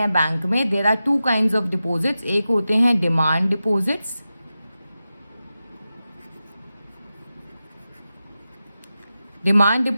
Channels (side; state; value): both; inverted; correlation -0.92